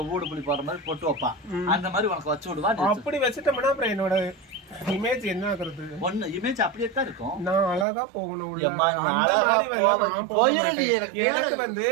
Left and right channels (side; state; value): left; drops out; at 7.9 s